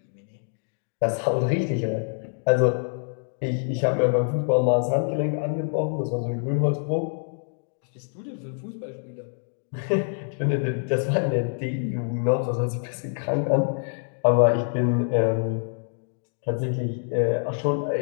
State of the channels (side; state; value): right; silent; digital silence